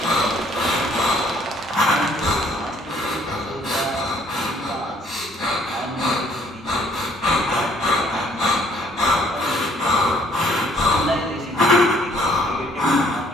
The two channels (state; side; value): normal; both; correlation 0.62